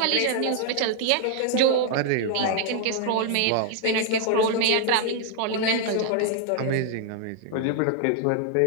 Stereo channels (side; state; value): both; different; correlation -0.01